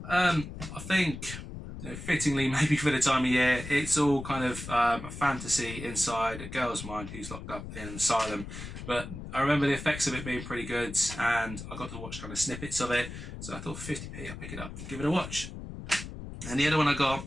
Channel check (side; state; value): left; noise; rumble, 10 dB below the sound